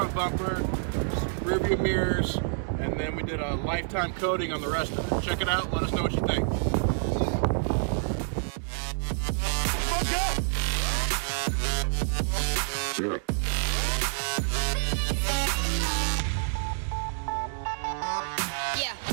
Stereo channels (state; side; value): silent; left; 59 dB below the other